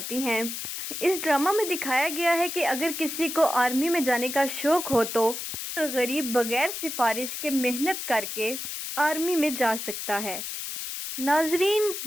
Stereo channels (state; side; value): noise; left; hiss, 6 dB below the sound